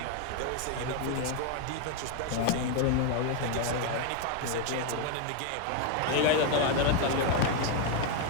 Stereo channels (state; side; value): different; both; correlation 0.01